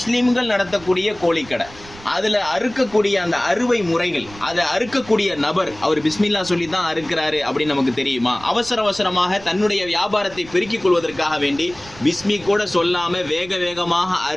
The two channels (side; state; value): right; noise; rumble, 20 dB below the sound